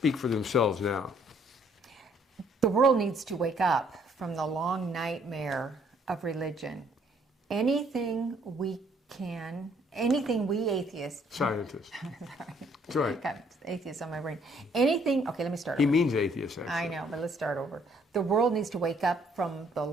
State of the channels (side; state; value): both; normal; correlation 0.65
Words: for themselves now. The world needs to wake up from the long nightmare of religion. Anything we atheists... Scientists. That's right. Got atheists on my brain. Anything... Okay, let me start over. He means atheists, actually. I know, but let's start over. The world needs to wake up from the